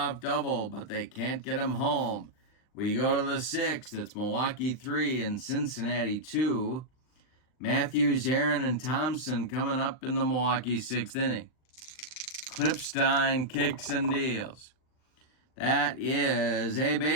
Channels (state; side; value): late; right; 39 ms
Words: double, but they can't get him home. We go to the 6th. It's Milwaukee 3 and Cincinnati 2. Matthews, Aaron, and Thompson coming up in the Milwaukee 6th inning. Klippstein kicks and deals. That is a